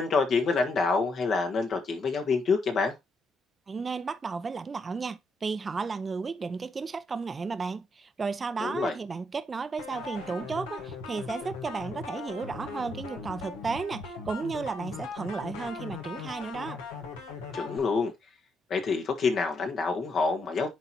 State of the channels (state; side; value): normal; both; correlation 0.77